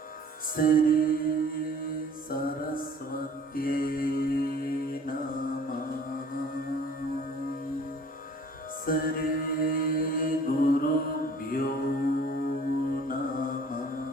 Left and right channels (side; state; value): both; normal; correlation 0.51